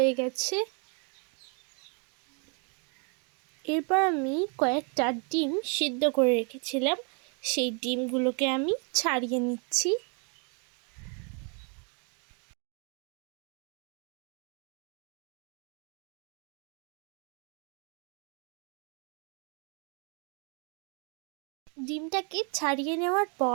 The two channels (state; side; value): quieter; left; 37.6 dB